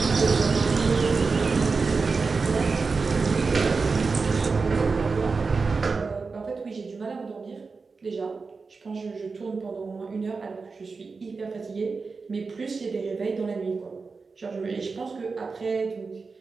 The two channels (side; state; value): left; quieter; 4.5 dB